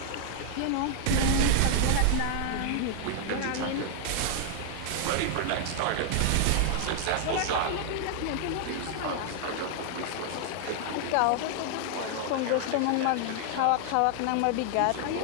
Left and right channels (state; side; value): different; both; correlation 0.00